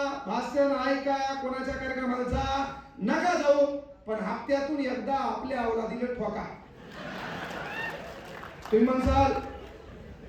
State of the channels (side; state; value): both; identical; correlation 1.00